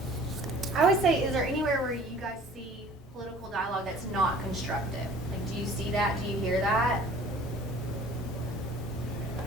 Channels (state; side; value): normal; both; correlation 0.49